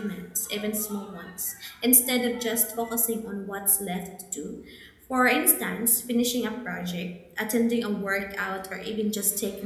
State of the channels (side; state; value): both; identical; correlation 1.00